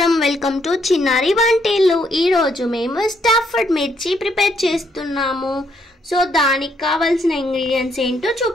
వెల్కమ్ టు చిన్నారి వంటిల్లు. ఈరోజు మేము స్టఫ్డ్ మిర్చి ప్రిపేర్ చేస్తున్నాము. సో దానికి కావాల్సిన ఇంగ్రీడియంట్స్ ఏంటో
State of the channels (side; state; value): both; normal; correlation 0.72